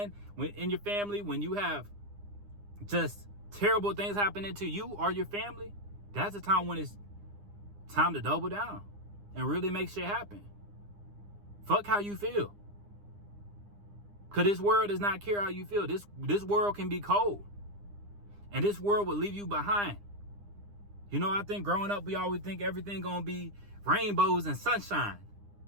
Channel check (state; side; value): late; left; 9.9 ms